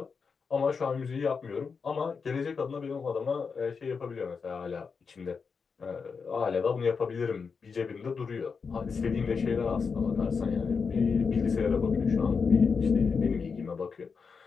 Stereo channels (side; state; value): right; quieter; 5.4 dB